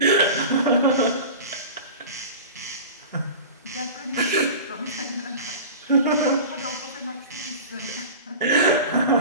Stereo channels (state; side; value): inverted; both; correlation -0.34